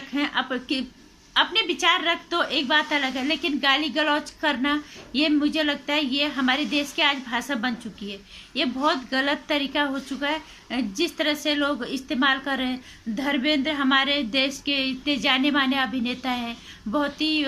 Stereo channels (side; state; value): both; identical; correlation 1.00